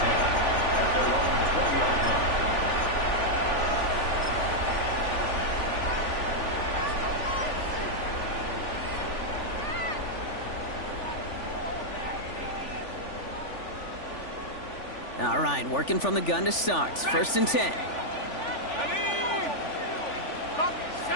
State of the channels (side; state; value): right; late; 3.4 ms